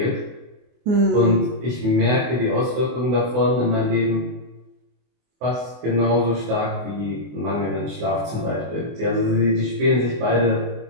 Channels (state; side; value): late; left; 24 ms